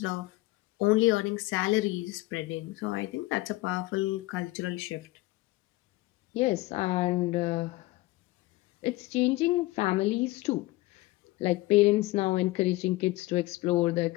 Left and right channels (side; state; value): right; quieter; 19.8 dB